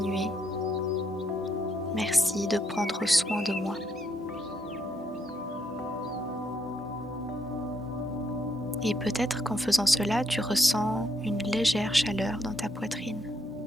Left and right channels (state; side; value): normal; both; correlation 0.76